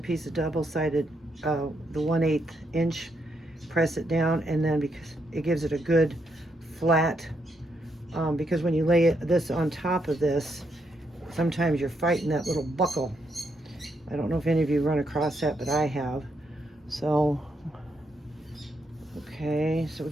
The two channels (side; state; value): both; normal; correlation 0.78